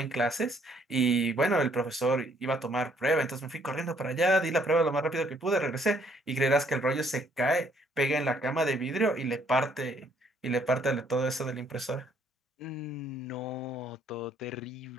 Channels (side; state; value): both; normal; correlation 0.66